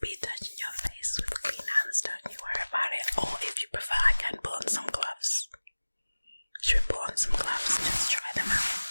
be touching your face with clean hands, don't you worry about it. Or if you prefer, I can put on some gloves. Should we put on some gloves? Just try them out.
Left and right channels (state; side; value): inverted; both; correlation -1.00